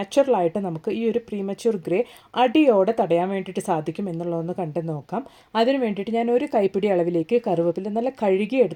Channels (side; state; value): both; identical; correlation 1.00